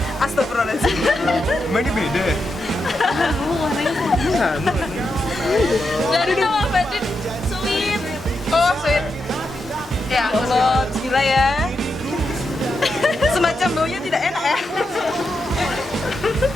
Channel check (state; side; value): normal; both; correlation 0.85